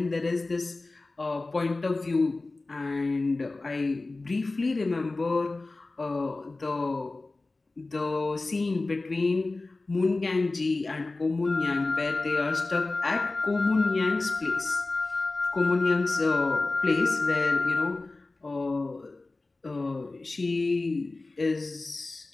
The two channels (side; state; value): right; quieter; 3.3 dB